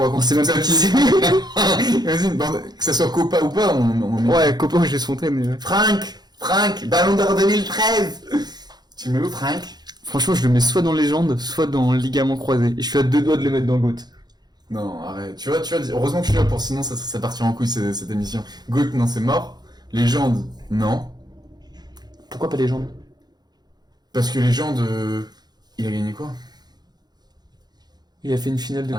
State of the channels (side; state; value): left; late; 0.20 ms